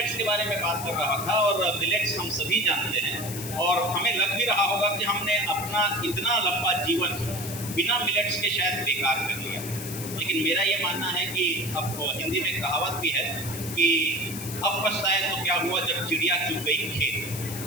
के बारे में बात कर रहा था और मिलेट्स हम सभी जानते हैं और हमें लग भी रहा होगा कि हमने अपना इतना लंबा जीवन बिना मिलेट्स के शायद बेकार कर लिया। लेकिन मेरा ये मानना है कि अब हिंदी में कहावत भी है कि अब पछताए तो क्या हुआ जब चिड़िया चुग गई खेत।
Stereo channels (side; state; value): left; noise; hiss, 9 dB below the sound